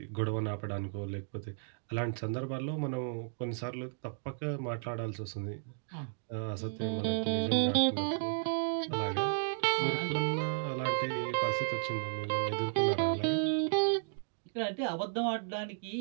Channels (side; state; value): left; silent; digital silence